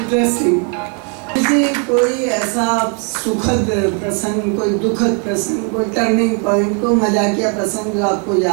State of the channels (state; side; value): quieter; left; 39.2 dB